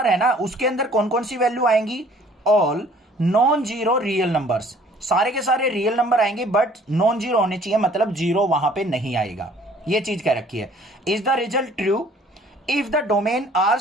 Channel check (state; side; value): normal; both; correlation 0.55